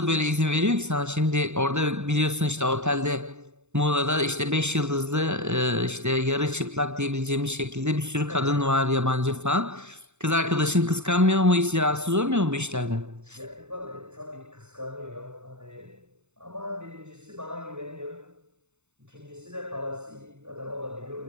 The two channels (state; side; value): late; left; 0.83 ms